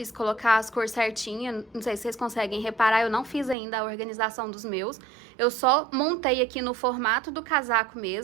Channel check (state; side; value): drops out; left; at 3.6 s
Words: colocar as cores certinhas. Não sei se vocês conseguem reparar, eu não fiz ainda a organização dos meus. Eu só montei aqui no formato do casaco